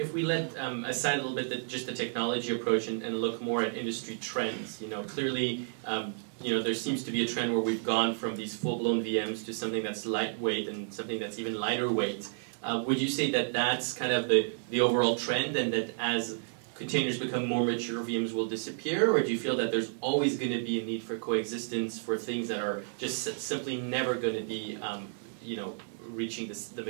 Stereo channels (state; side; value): silent; left; digital silence